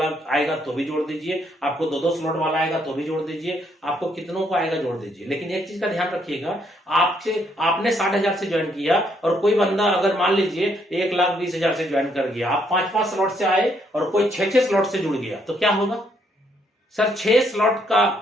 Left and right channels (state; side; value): normal; both; correlation 0.71